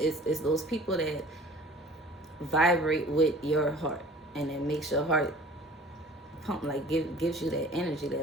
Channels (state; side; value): normal; both; correlation 0.47